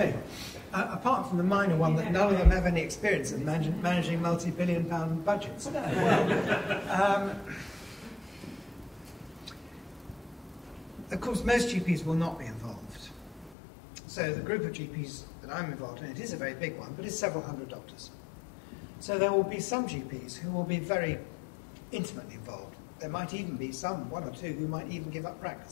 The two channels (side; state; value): right; drops out; at 13.6 s